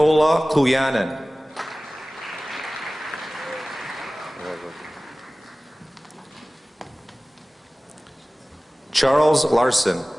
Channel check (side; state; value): both; normal; correlation 0.98